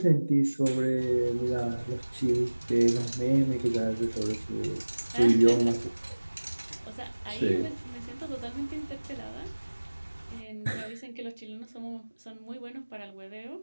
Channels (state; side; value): inverted; both; correlation -1.00